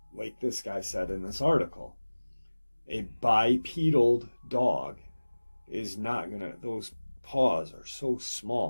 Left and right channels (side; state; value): both; inverted; correlation -1.00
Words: like this guy said in this article, a bipedal dog is not gonna, those paws are so